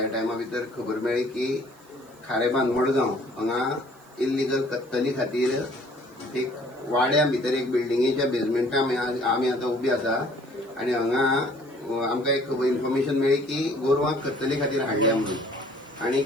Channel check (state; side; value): noise; right; hiss, 29 dB below the sound